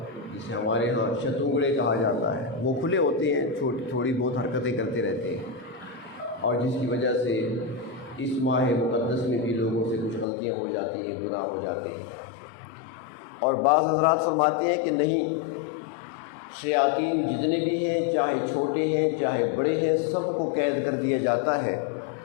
جسے ہمارے ہاں شتونگڑے کہا جاتا ہے، وہ کھلے ہوتے ہیں، تھوڑی بہت حرکتیں کرتے رہتے ہیں، اور جس کی وجہ سے اس ماہ مقدس میں بھی لوگوں سے کچھ غلطیاں ہو جاتی ہیں، گناہ ہو جاتے ہیں. اور بعض حضرات فرماتے ہیں کہ نہیں، شیاطین جتنے بھی ہیں، چاہے چھوٹے ہیں چاہے بڑے ہیں، سب کو قید کر دیا جاتا ہے.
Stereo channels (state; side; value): drops out; right; at 10.2 s